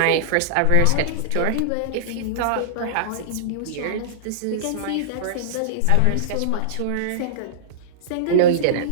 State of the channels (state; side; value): different; both; correlation -0.02